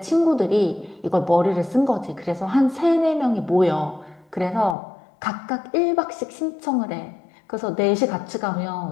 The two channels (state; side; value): drops out; right; at 4.8 s